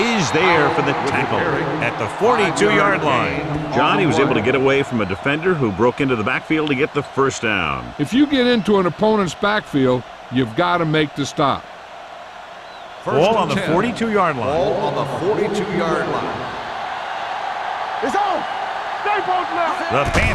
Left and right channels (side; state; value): both; identical; correlation 1.00